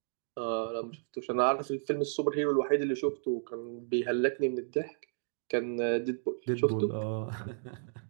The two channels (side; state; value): left; silent; digital silence